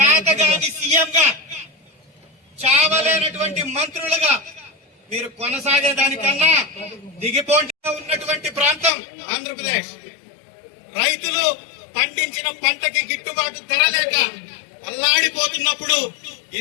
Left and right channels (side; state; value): right; drops out; at 8.9 s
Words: సీఎంగా, చావలేనటువంటి మంత్రులుగా మీరు కొనసాగేదానికన్నా దిగిపోటీ ఉన్నటువంటి ప్రాంతం ఆంధ్రప్రదేశ్. రైతులు పండించిన పంటకి గిట్టుబాటు ధర లేక అల్లాడిపోతున్నప్పుడు